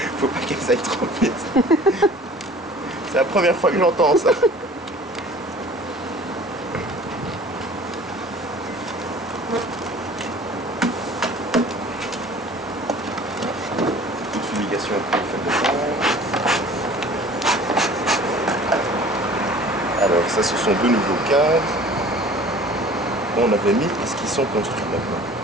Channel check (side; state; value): both; normal; correlation 0.47